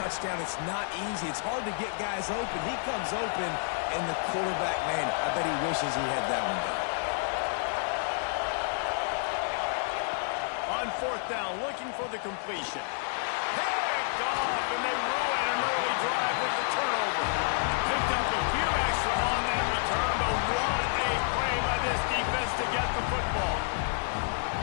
It's not easy. It's hard to get guys open. He comes open, and the quarterback, man, I bet he wishes he had that one down. On 4th down, looking for the completion. Picked off, and they ruin an early drive with the turnover. Picked up a few extra on that return, but what a play by this defense to get the football.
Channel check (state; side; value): silent; right; 58 dB below the other